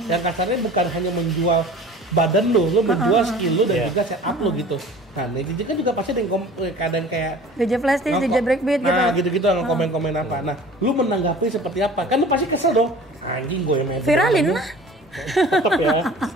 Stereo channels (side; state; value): both; normal; correlation 0.43